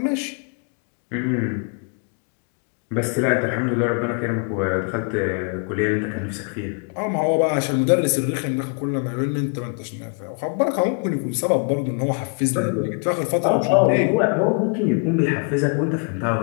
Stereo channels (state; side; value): quieter; right; 39.5 dB